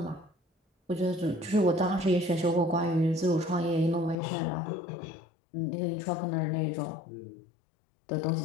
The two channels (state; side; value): drops out; right; at 4.2 s